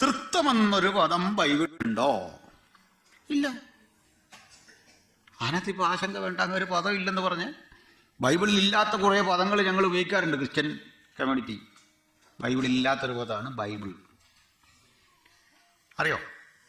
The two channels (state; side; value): identical; both; correlation 1.00